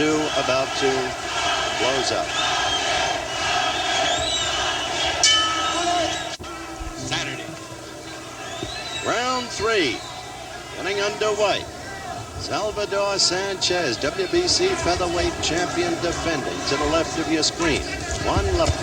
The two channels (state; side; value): identical; both; correlation 1.00